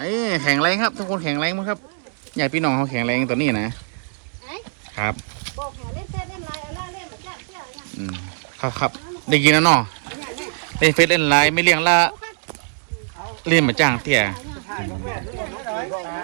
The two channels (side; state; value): left; silent; digital silence